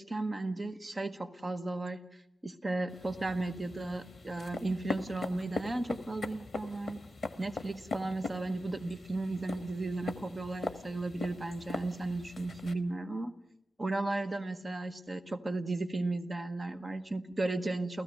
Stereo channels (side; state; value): both; normal; correlation 0.93